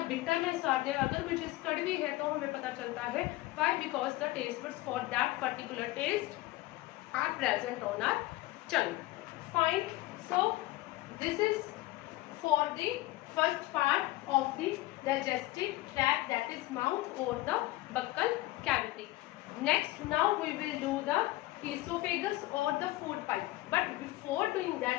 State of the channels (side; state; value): right; quieter; 18.4 dB